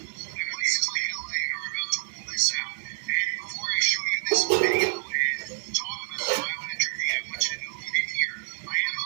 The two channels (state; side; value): silent; left; digital silence